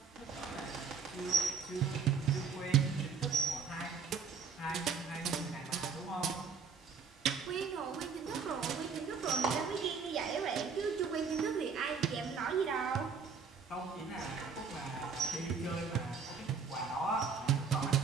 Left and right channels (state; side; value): quieter; left; 5.7 dB